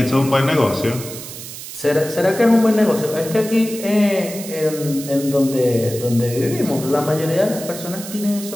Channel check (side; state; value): right; noise; hiss, 11 dB below the sound